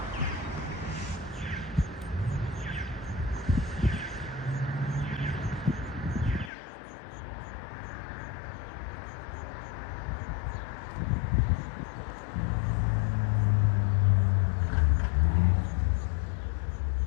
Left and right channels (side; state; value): right; drops out; at 6.5 s